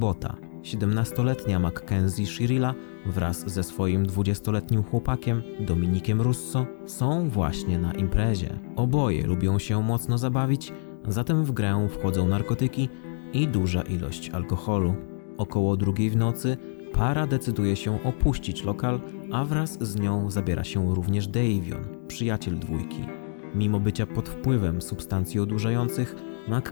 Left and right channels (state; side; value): silent; right; 61 dB below the other